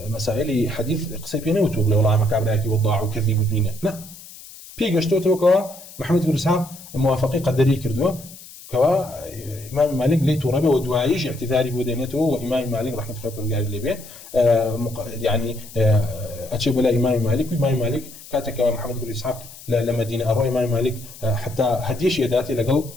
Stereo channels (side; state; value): left; noise; hiss, 18 dB below the sound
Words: مسائل حديث قصيب نوتو والله ما كابراكي وضاع وكذب ودنيا لا بيجشتو توكا محمد بن اسحاق موافقي قدري كردو كوا امام مالك ليتو ربه ودوايش اعتذاري بودينته وامام مالك رحمه الله برجال اللي به يعني اتشبه لا امام مالك وامام مالك كاتك محمد بن اسحاق لمدينه اروي امام مالك حتى هديش يداتي لقل